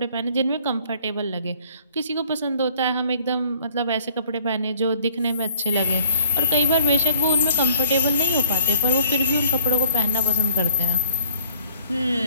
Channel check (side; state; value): both; inverted; correlation -0.60